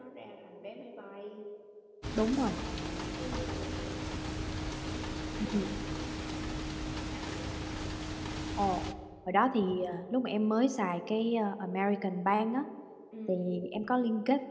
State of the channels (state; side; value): identical; both; correlation 1.00